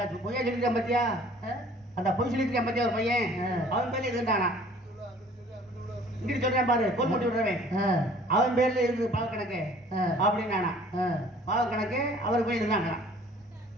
பொய்யா சொல்லிருக்கான் பாத்தியா, அந்த பொய் சொல்லிருக்கான் பாத்தியா ஒரு பையன், அவன் பேர்ல இருந்தானா. இங்க சொல்றேன் பாரு கோல் போட்டு விடுறவன் அவன் பேர்ல இருந்து பாவ கணக்கு அப்படின்னானா. பாவ கணக்கு அவர் போய் இருந்தாங்களா.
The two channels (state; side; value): normal; both; correlation 0.52